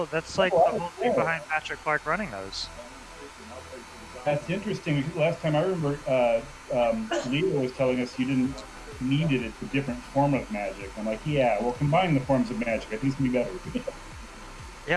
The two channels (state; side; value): identical; both; correlation 1.00